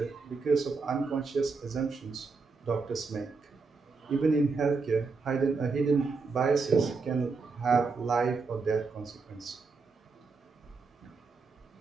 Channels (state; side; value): quieter; left; 4.4 dB